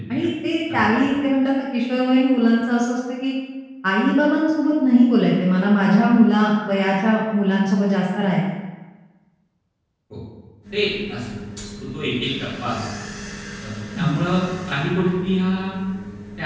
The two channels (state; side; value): identical; both; correlation 1.00